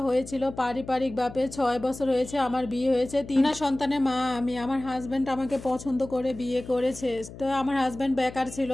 হয়েছিল পারিবারিক ভাবে, 6 বছর হয়েছে আমার বিয়ে হয়েছে, 3 সন্তানের মা আমি। আমার হাজব্যান্ড আমাকে পছন্দ করে বিয়ে করেছে। তো আমার হাজব্যান্ড বেকার ছিল,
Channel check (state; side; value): noise; left; hum, 15 dB below the sound